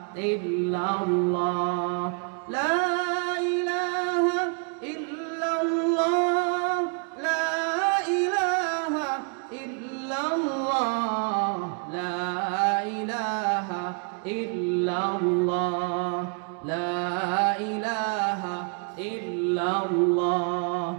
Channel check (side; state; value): left; quieter; 39.1 dB